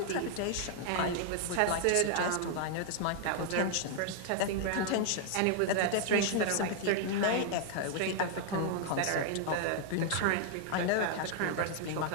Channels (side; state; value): both; different; correlation 0.00